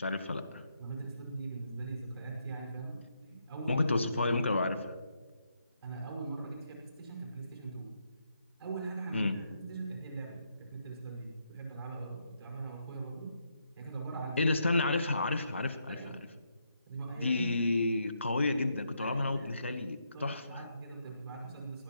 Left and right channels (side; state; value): both; inverted; correlation -0.78